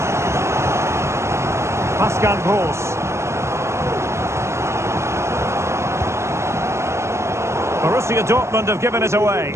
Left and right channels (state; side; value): late; left; 0.13 ms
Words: Pascal Gross. Borussia Dortmund have given it away.